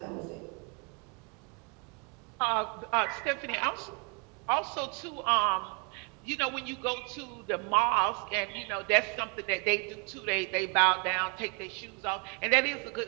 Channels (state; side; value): quieter; left; 36.2 dB